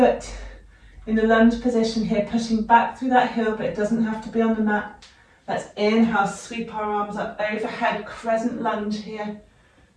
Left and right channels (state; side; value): identical; both; correlation 1.00